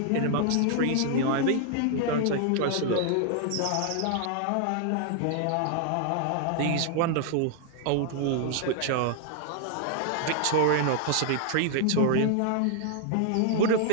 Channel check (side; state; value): both; different; correlation 0.00